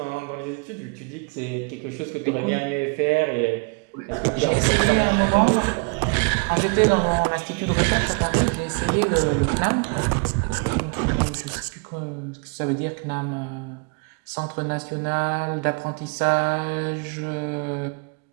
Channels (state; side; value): quieter; left; 33.1 dB